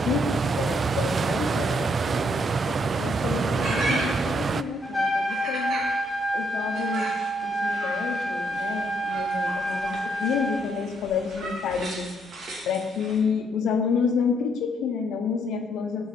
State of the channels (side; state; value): both; normal; correlation 0.72